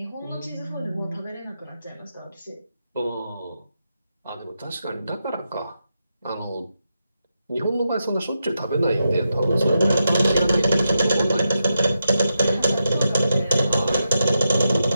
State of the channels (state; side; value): inverted; both; correlation -0.86